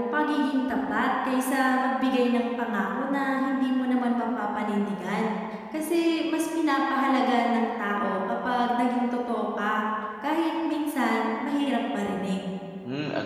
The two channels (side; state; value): both; identical; correlation 1.00